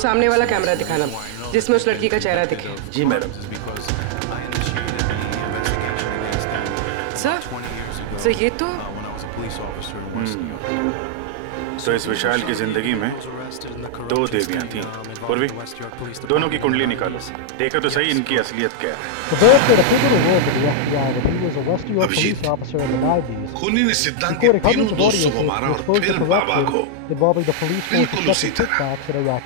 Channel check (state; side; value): different; both; correlation -0.01